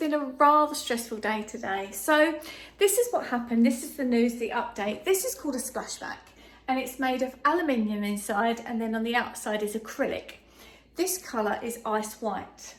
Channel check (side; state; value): both; identical; correlation 1.00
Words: a rather stressful day today. So this is what happened. This is the news, the update. This is called a splashback and it's made of aluminium inside and then on the outside is acrylic. This colour is ice white.